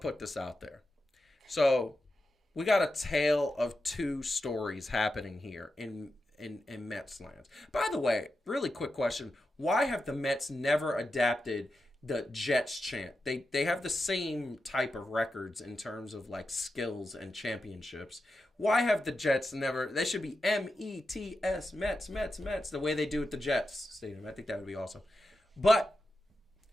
this out there. So, we got a tale of two stories happening here in Mets lands. By the way, really quick question. Why have the Mets never adapted the Jets chant? They have the same type of records in terms of skills and championships. Why have the Jets never... They should be M-E-T-S, Mets, Mets, Mets, the way they do at the Jets Stadium. I think that would be awesome. But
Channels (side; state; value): both; normal; correlation 0.90